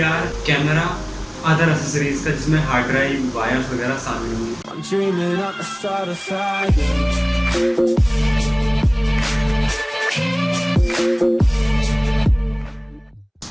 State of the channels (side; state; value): both; identical; correlation 1.00